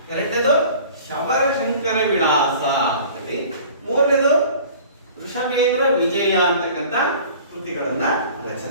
ಎರಡನೇದು ಶಬರಶಂಕರ ವಿಳಾಸ ಅಂತೇಳಿ ಮೂರನೇದು ವೃಷಭೇಂದ್ರ ವಿಜಯ ಅಂತಕ್ಕಂಥ ಕೃತಿಗಳನ್ನ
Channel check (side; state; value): both; inverted; correlation -0.46